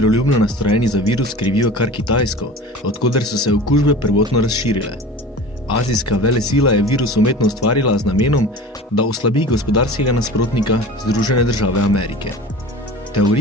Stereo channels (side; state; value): both; normal; correlation 0.37